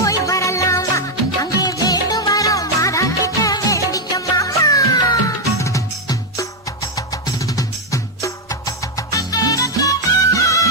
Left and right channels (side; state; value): both; normal; correlation 0.03